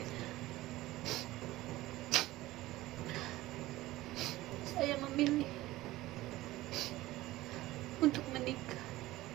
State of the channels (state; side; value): quieter; left; 17.4 dB